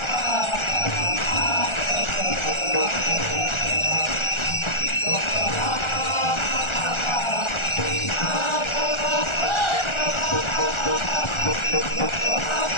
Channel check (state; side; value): late; right; 1.4 ms